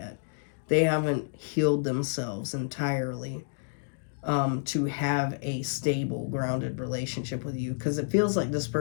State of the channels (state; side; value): silent; right; digital silence